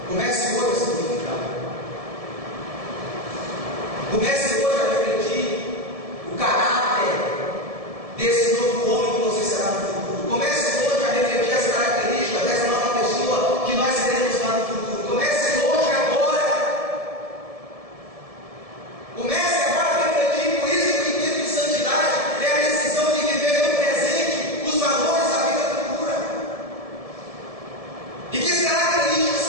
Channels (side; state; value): left; late; 1.7 ms